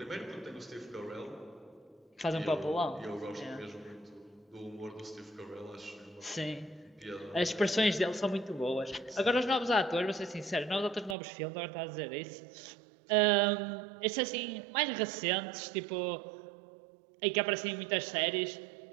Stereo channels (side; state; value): left; drops out; at 11.2 s